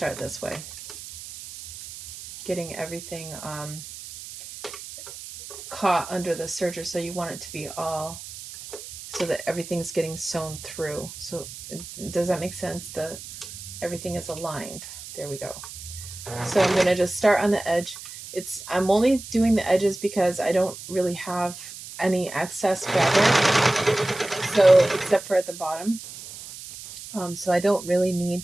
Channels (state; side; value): noise; right; hiss, 13 dB below the sound